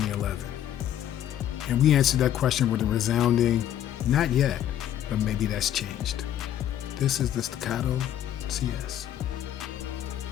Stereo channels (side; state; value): right; quieter; 11.1 dB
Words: And we answered that question with a resounding, not yet, but maybe that's changed. This is the Staccato CS.